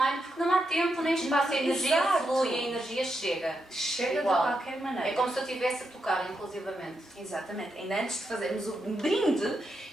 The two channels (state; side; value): normal; both; correlation 0.84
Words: porque não há tempo nem espaço, a energia Exato. flui, a energia chega. Chega Igual. de qualquer maneira. É como se eu estivesse a tocar, inclusivamente. Exatamente. Ainda antes de fazermos o brinde,